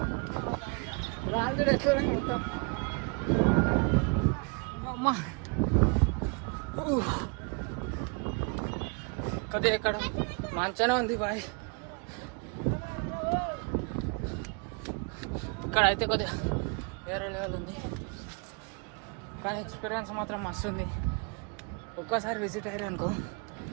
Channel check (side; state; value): left; quieter; 33.2 dB